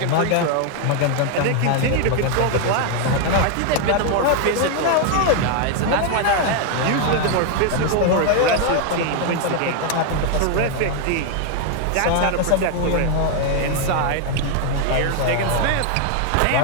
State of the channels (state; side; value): different; both; correlation 0.00